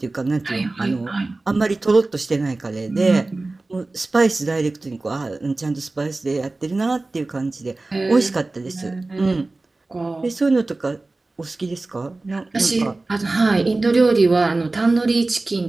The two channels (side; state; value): left; quieter; 3.2 dB